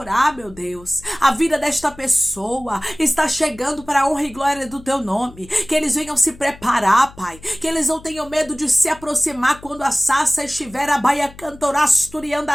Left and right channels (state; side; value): noise; left; hum, 21 dB below the sound